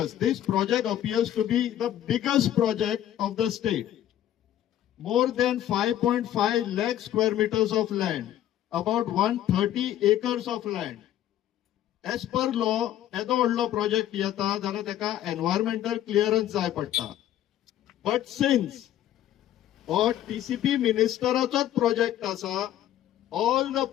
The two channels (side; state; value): right; quieter; 12.0 dB